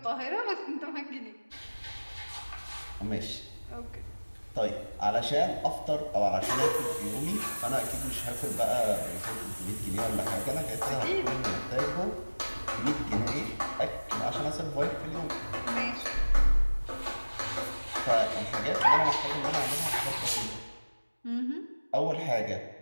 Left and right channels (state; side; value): inverted; both; correlation -1.00